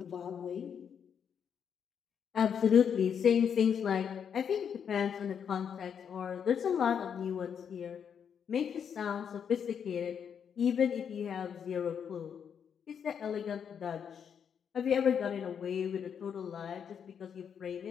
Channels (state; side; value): quieter; right; 7.6 dB